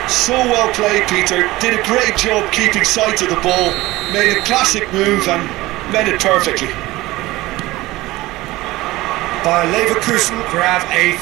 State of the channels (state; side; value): quieter; left; 18.8 dB